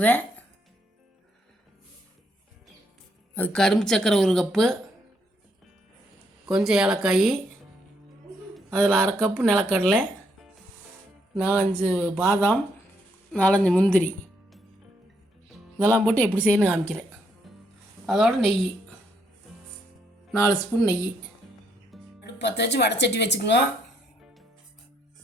அது கரும்பு சக்கரை 1 கப்பு, கொஞ்சம் ஏலக்காய், அதில் 1/2 கப்பு நிலக்கடலை, 4-5 பாதாம், 4-5 முந்திரி, இதெல்லாம் போட்டு எப்படி செய்யணும்னு காமிக்கிறேன். அதோட நெய் 4 ஸ்பூன் நெய். அடுப்பு பற்ற வச்சு வடைச்சட்டி வச்சுக்கோங்க.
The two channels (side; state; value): both; normal; correlation 0.73